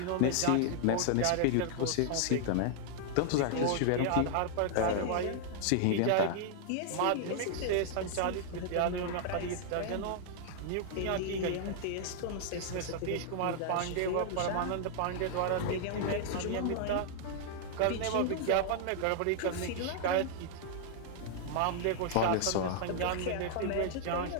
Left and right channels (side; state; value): both; different; correlation 0.00